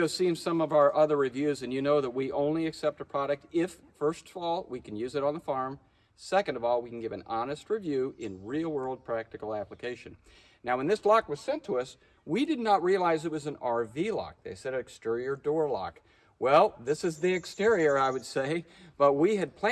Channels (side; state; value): both; identical; correlation 1.00